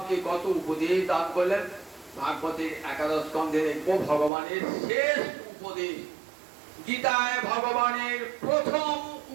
কত উপদেশ দান করলেন। ভাগবতের 11 স্কন্ধে দেখবো ভগবানের শেষ উপদেশ, গীতায় ভগবানের প্রথম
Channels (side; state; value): left; drops out; at 4.3 s